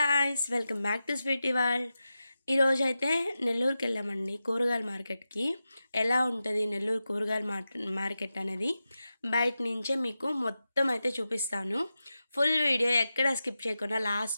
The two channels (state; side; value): inverted; both; correlation -0.91